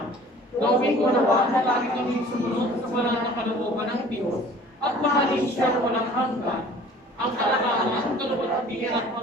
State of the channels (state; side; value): normal; both; correlation 0.48